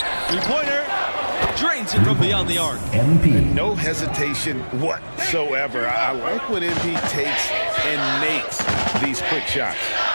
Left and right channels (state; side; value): inverted; both; correlation -1.00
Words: Three-pointer. Drains it from beyond the arc. MP. No hesitation whatsoever. I like when MP takes and makes these quick shots.